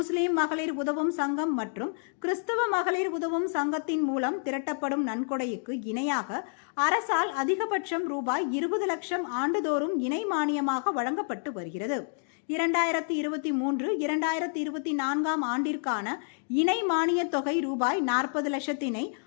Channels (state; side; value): silent; right; 59 dB below the other